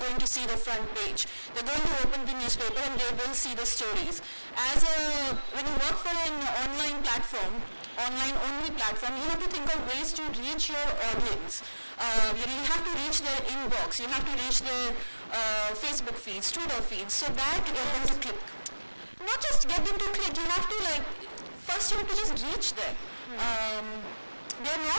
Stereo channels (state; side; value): inverted; both; correlation -1.00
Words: to see the front page. They're going to open the newspaper and they will see the stories. When you work for an online platform, online only platform, you have to think of ways to reach your audience. You have to reach their inbox, you have to reach their Facebook feeds, Twitter feeds, so that you get them to click. Not just get them to click, you have to first you have to just reach them. They're